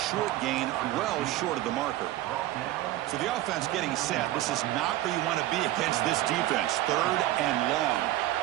short gain, well short of the marker. So the offense getting set. This is not where you want to be against this defense. Third and long.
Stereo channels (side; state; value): left; quieter; 15.2 dB